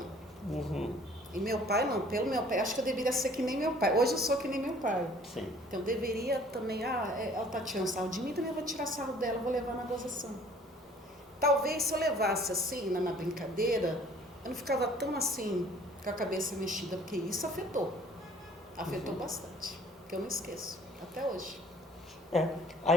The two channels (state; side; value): normal; both; correlation 0.54